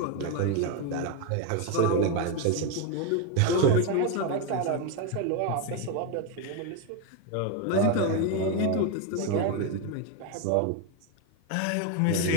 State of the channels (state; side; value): different; both; correlation 0.01